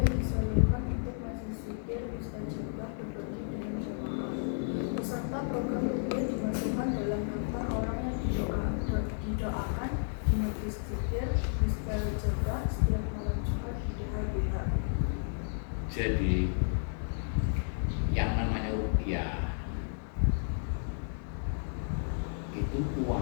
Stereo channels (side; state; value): right; silent; digital silence